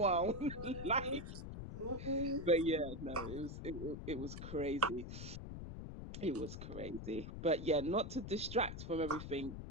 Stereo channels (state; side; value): noise; left; rumble, 8 dB below the sound